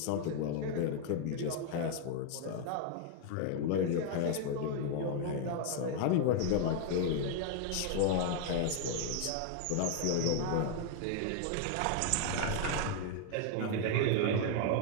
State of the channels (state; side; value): different; both; correlation 0.00